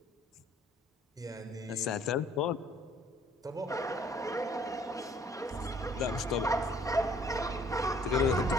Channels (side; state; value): both; normal; correlation 0.58